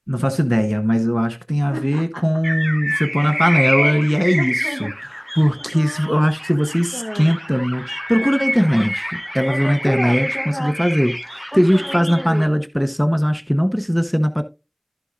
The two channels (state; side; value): identical; both; correlation 1.00